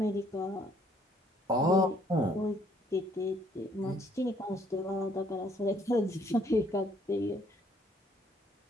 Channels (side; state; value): both; normal; correlation 0.64